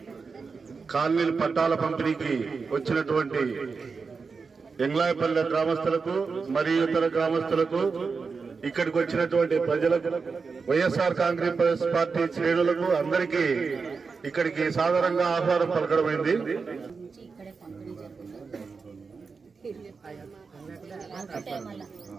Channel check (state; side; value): quieter; left; 4.9 dB